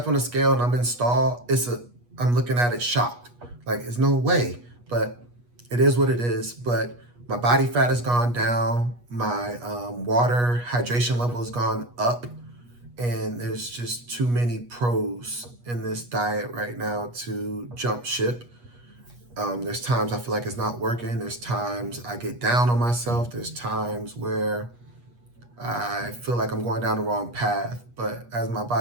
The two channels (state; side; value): late; left; 8.3 ms